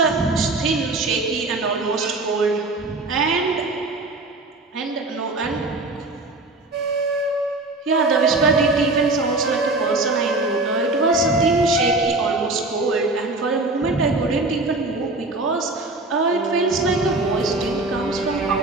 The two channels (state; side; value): quieter; left; 3.1 dB